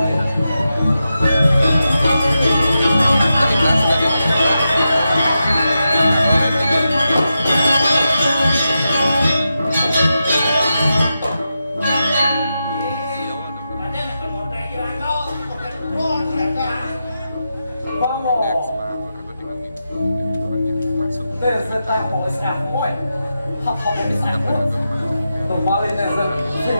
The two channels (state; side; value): inverted; both; correlation -0.89